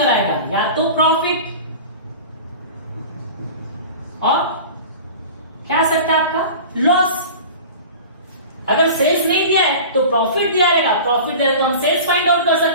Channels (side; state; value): both; inverted; correlation -0.37